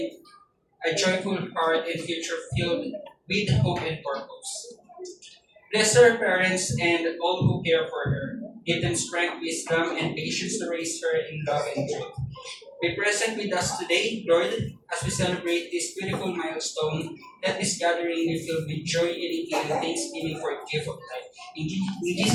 a joyful heart and future filled with hope and purpose. Bless her parents and all who care for her. Give them strength, wisdom, and patience to raise her in love and truth. Be present with us today, Lord, as we celebrate this beautiful milestone. Let this gathering be filled with joy, unity, and thanksgiving for a gift of life. In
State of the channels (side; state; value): both; identical; correlation 1.00